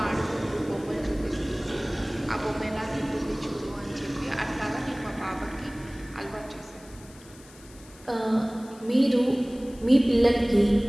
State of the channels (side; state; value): left; noise; hiss, 23 dB below the sound